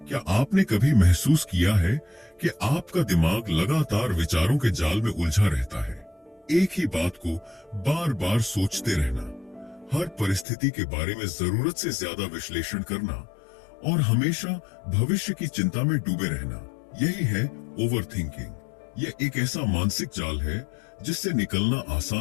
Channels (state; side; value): drops out; right; at 10.5 s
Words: क्या आपने कभी महसूस किया है कि आपका दिमाग लगातार विचारों के जाल में उलझा रहता है? एक ही बात को बार बार सोचते रहना, हर परिस्थिति के बारे में जरूरत से ज्यादा विश्लेषण करना और हमेशा भविष्य की चिंता में डूबे रहना, यही है ओवरथिंकिंग। यह एक ऐसा मानसिक जाल है जिससे निकलना